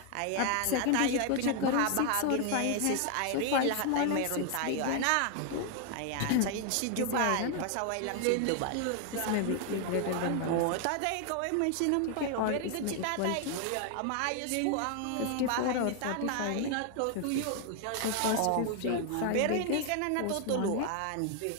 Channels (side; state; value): both; different; correlation 0.00